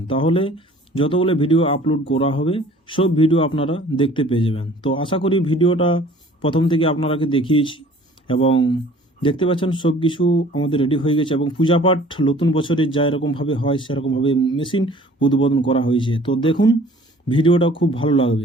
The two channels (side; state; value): both; normal; correlation 0.51